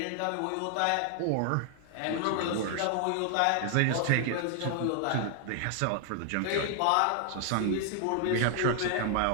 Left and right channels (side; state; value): both; different; correlation 0.00